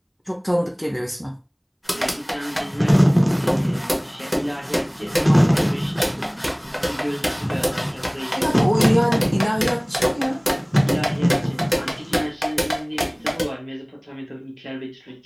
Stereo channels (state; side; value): identical; both; correlation 1.00